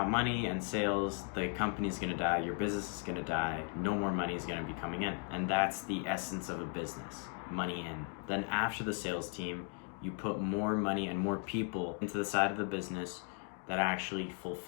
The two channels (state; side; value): quieter; right; 39.7 dB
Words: money and sales, the company's gonna die, your business is gonna die, no more money is gonna be coming in. And that's the essence of a business, money in. Then after the sales team, you put more money and more people into the side of the business that actually